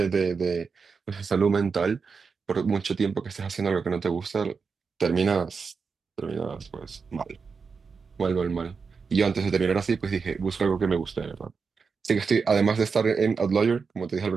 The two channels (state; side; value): quieter; left; 5.3 dB